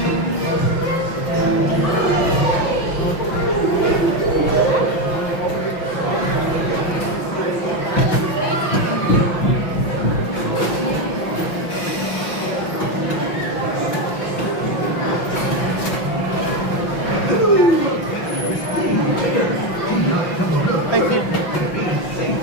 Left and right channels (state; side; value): late; right; 5.8 ms